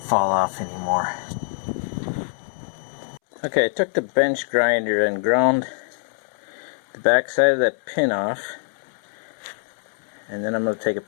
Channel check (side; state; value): right; silent; 63 dB below the other